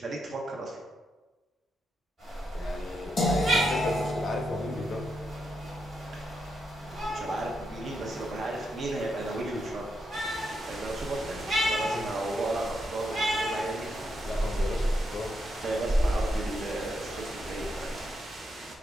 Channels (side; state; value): both; normal; correlation 0.82